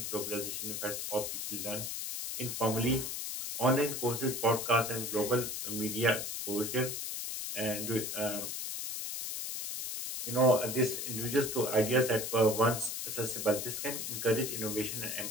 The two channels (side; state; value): left; noise; hiss, 4 dB below the sound